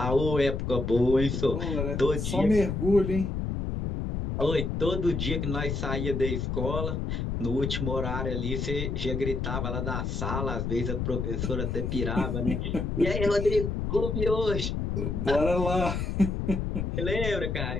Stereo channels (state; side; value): noise; left; rumble, 2 dB below the sound